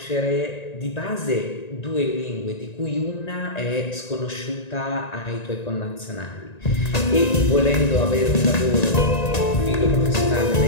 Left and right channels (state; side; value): late; right; 1.9 ms